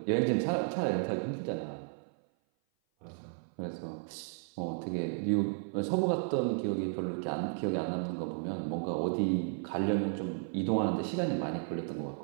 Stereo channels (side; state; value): left; silent; 55 dB below the other